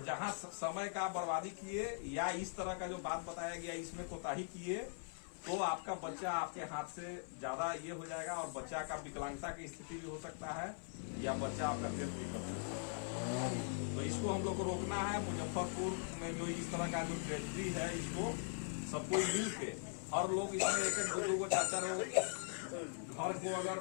जहां समय का बर्बादी किए या इस तरह का जो बात बताया गया इसमें कोताही किए तो आपका बच्चा आपके हाथ से ज्यादा ये हो जाएगा, और बच्चा का विकलांगता की स्थिति भी हो सकता है, या बच्चा आपका डेथ भी कर सकता है। तो इसको हम लोग को रोकना है। मुजफ्फरपुर में जो इस तरह का जो ट्रेजेडी है, इसको सबको मिल के हर लोग इसमें एक दो को चार चार घर को अगर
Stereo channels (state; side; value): silent; right; 50 dB below the other